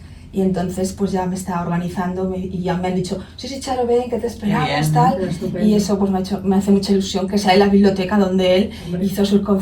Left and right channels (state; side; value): identical; both; correlation 1.00